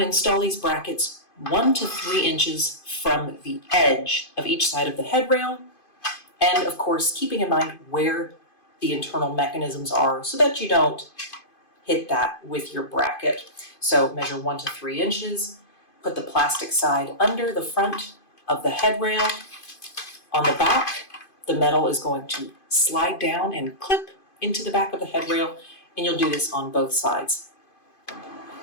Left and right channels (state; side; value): late; right; 2.5 ms